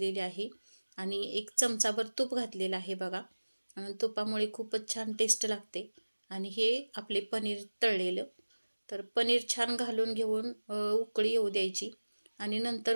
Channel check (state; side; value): inverted; both; correlation -1.00